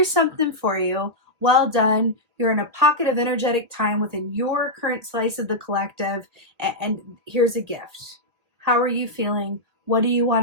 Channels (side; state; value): left; late; 2.4 ms